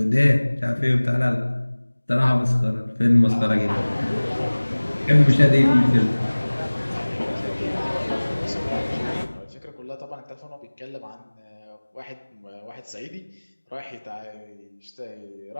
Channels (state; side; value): inverted; both; correlation -1.00